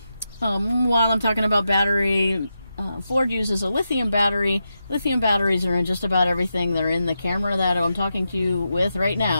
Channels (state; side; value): inverted; both; correlation -0.87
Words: While I'm talking about battery, Ford uses a lithium battery. Lithium batteries are in just about everything. They're in the camera that I'm talking to you with right